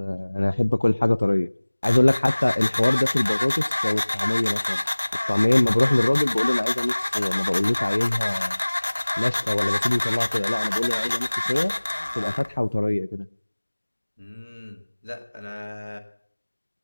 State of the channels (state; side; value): inverted; both; correlation -1.00